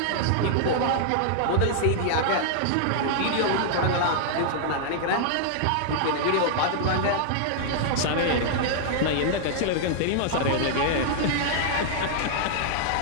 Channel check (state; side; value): different; both; correlation -0.01